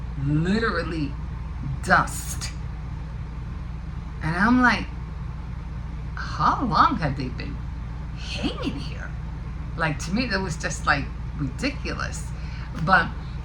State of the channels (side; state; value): both; identical; correlation 1.00